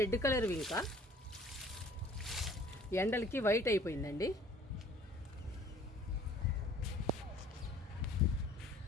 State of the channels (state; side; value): normal; both; correlation 0.54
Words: కలర్ వింక, ఎండలకి వైట్ అయిపోయిందండి.